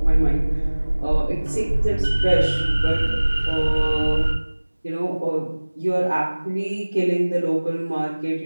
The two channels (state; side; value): inverted; both; correlation -1.00